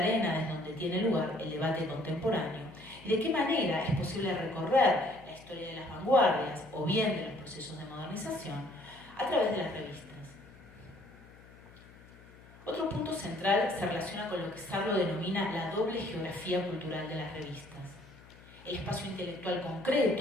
desde donde tiene lugar el debate contemporáneo y de qué manera es posible recorrer la historia de las vanguardias o bien de los procesos de modernización a través de las revistas. Otro punto central se relaciona con lo que Sarlo denomina la doble geografía cultural de las revistas. El espacio intelectual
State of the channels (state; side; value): noise; left; hum, 22 dB below the sound